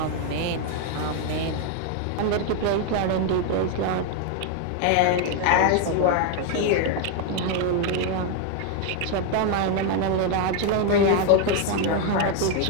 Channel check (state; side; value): different; both; correlation 0.00